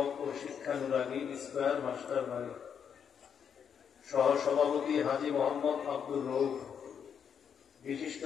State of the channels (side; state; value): right; quieter; 7.6 dB